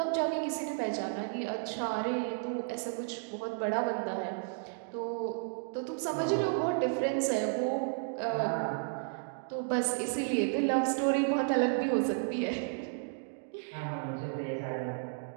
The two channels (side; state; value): left; quieter; 39.6 dB